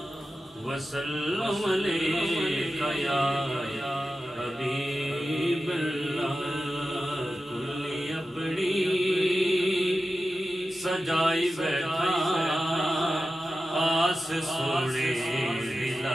وسلم علیہ یا حبیب اللہ کلی اپنی سجائی بیٹھا آس سونے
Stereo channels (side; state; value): both; normal; correlation 0.93